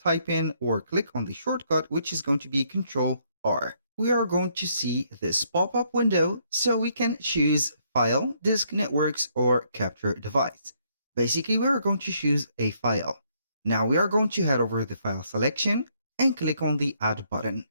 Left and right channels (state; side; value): inverted; both; correlation -0.71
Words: type in or click on the shortcut, which is going to be Control R. We are going to see this pop-up window, so we can choose File, Disk Networks, or Capture Device. Basically, we are going to choose a file. Now we are going to head over the file selection and click on the Add button.